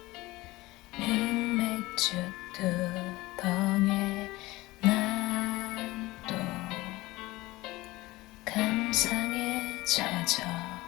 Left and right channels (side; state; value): right; quieter; 19.8 dB